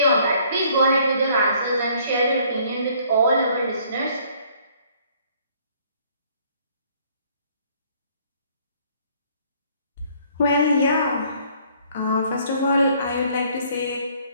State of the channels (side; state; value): both; inverted; correlation -0.61